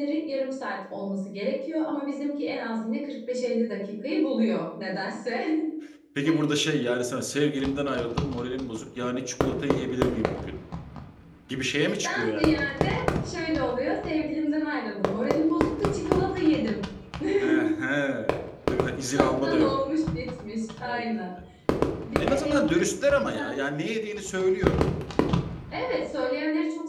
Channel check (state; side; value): identical; both; correlation 1.00